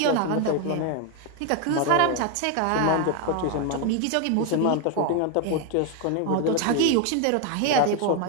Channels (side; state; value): both; different; correlation 0.01